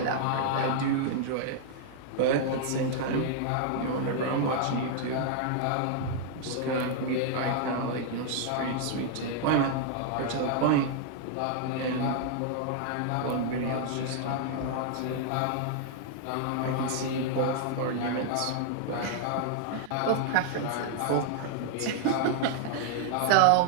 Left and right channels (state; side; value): different; both; correlation -0.01